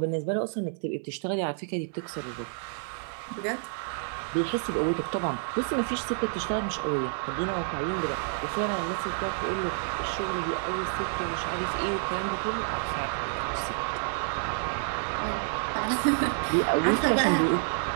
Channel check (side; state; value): left; silent; 59 dB below the other